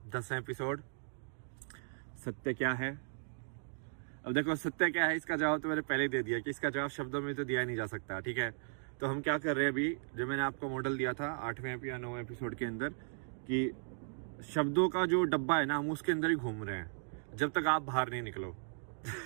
10वां एपिसोड। सत्य क्या है। अब देखो, सत्य क्या है इसका जवाब तो मैंने पहले ही दे दिया कि इसका जवाब शब्दों में तो दिया नहीं जा सकता। ठीक है, तो हम क्या कर रहे हैं अभी, जो मैंने आपको मॉडल दिया था 8वें या 9वें एपिसोड के अंदर, कि शब्दों का जो डब्बा है ना, हम उसके अंदर ही घूम रहे हैं जब तक आप बाहर नहीं निकलो।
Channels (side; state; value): left; silent; digital silence